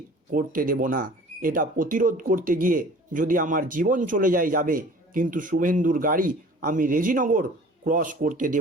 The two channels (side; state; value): both; normal; correlation 0.46